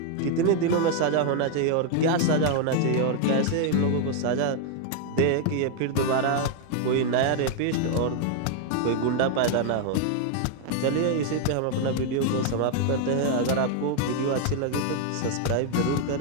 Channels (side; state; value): both; different; correlation 0.00